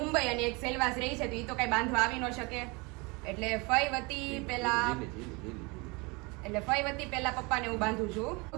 અને એક સેલવાસ રહી છે, તો એ તો કઈ બાંધવા આવી ન શકે. એટલે ફઈ વતી પહેલા પપ્પાને હું બાંધું છું.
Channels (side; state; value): left; quieter; 27.5 dB